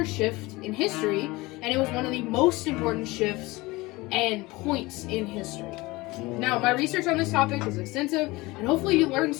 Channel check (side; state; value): right; quieter; 21.6 dB